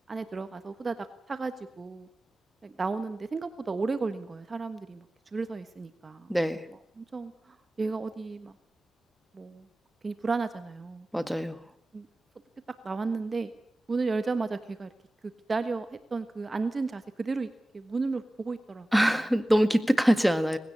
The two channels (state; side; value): normal; both; correlation 0.97